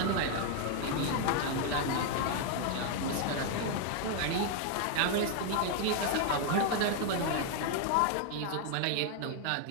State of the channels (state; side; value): different; both; correlation 0.00